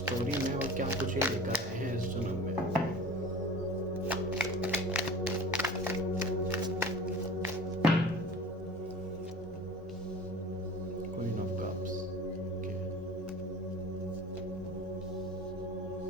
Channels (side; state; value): both; normal; correlation 0.39